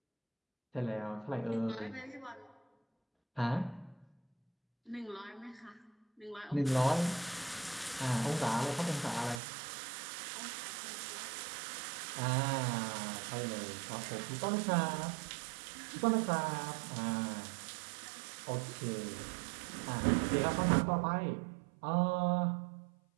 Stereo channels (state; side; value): drops out; left; at 9.4 s